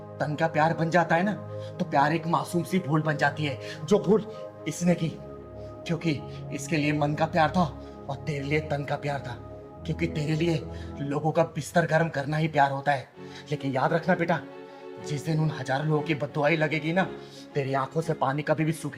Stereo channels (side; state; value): both; identical; correlation 1.00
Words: तन का प्यार बन जाता है ना तो प्यार एक मासूम सी भूल बन जाती है, जो भूल इसने की क्योंकि इसके लिए मन का प्यार था और तेरे लिए तन का प्यार था, क्योंकि तेरे लिए लोगों का बिस्तर गर्म करना ही प्यार होता है। लेकिन याद रखना बेटा, जिस दिन उन हजारों लोगों की बद्दुआई लगेगी ना, तेरी आंखों से पानी कभी भी